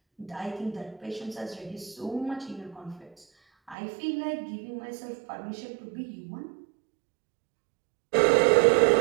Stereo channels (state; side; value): drops out; left; at 3.8 s